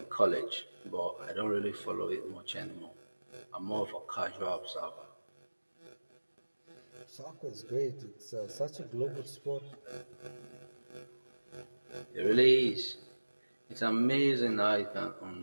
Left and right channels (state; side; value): inverted; both; correlation -1.00